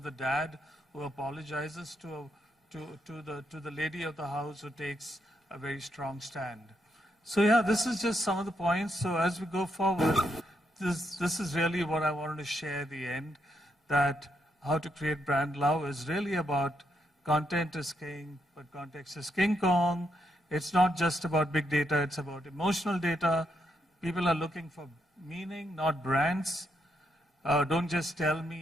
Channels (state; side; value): normal; both; correlation 0.79